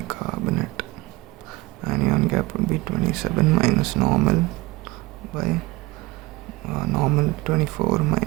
Anion gap would be 27 minus normal by normal 24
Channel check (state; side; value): quieter; left; 20.9 dB